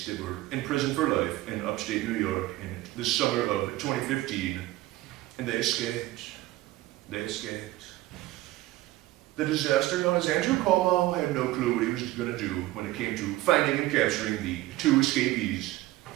that were in prison for life in upstate New York in the summer of 2015, and they escaped. They escaped. The disaster known as Andrew Cuomo had no clue what he was going to do when it came to finding and capturing the 2 escapees.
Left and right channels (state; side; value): quieter; left; 17.2 dB